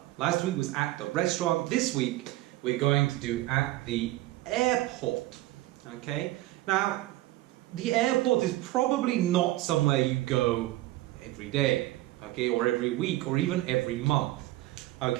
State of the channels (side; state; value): left; quieter; 17.3 dB